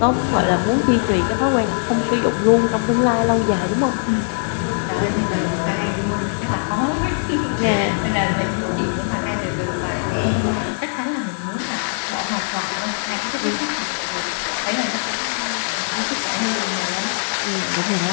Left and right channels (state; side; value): silent; right; digital silence